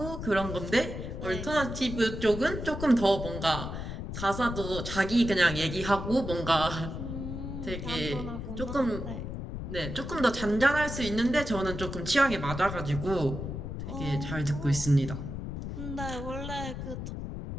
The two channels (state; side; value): noise; left; rumble, 6 dB below the sound